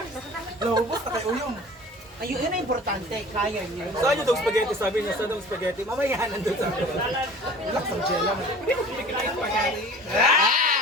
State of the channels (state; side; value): normal; both; correlation 0.43